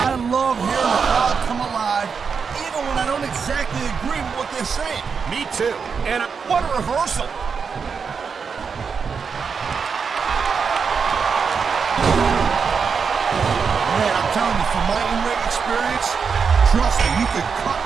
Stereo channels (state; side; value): quieter; left; 5.8 dB